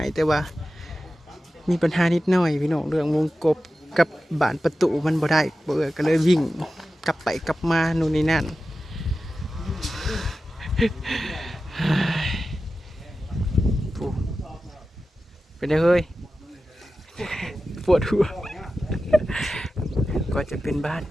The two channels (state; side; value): normal; both; correlation 0.94